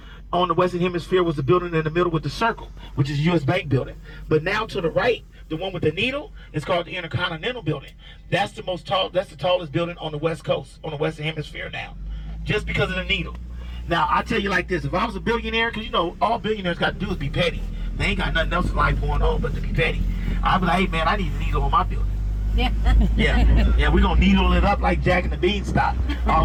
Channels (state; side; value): identical; both; correlation 1.00